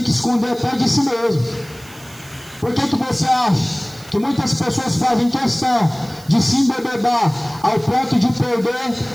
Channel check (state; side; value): noise; right; hiss, 22 dB below the sound